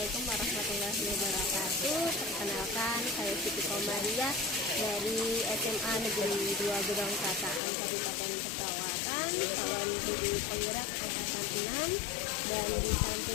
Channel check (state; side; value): drops out; right; at 7.6 s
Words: warahmatullahi wabarakatuh. Perkenalkan, saya Siti Komariah dari SMA Negeri 2 Gedong Kataan Kabupaten Pesawaran, calon guru penggerak angkatan 6. Dan di